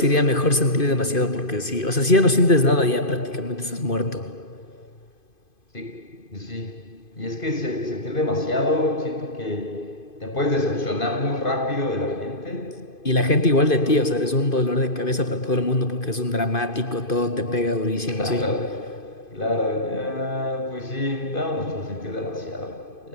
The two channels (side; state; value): right; late; 2.5 ms